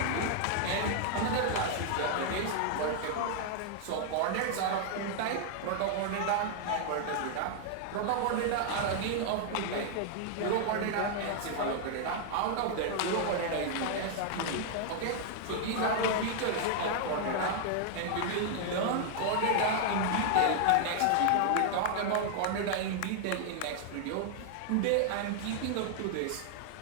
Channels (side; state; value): both; different; correlation 0.00